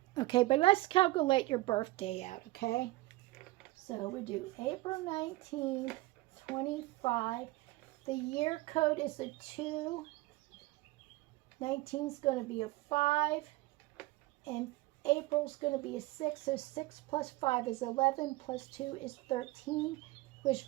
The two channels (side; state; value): left; quieter; 19.3 dB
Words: Okay, but let's calculate your birthday out, okay? So we do April 19th, 25. The year code is a 2. 19 is going to be a 5. And April's going to be a 6, so 6 plus 5 is 11, plus 2 is 13, which